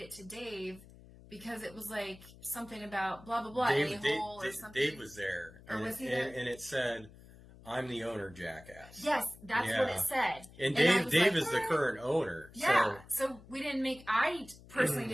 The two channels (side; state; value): left; noise; hum, 21 dB below the sound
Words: it to Dave, because it was like something about blah, blah, blah, Dave or something. Dave was there. Or was he there? And it said, "I'm the owner, jackass." Yes, that's what it said. And Dave is the current owner. Yeah, so we didn't make... I personally